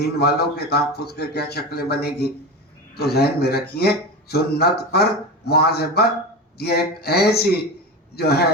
والوں کے تحفظ کے کیا شکلیں بنے گی. تو ذہن میں رکھیے سنت پر مواظبت یہ ایک ایسی جو ہے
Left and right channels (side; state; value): both; normal; correlation 0.24